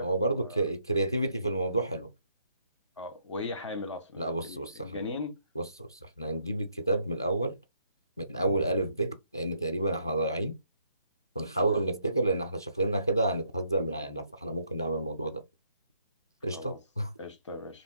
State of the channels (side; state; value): both; inverted; correlation -0.71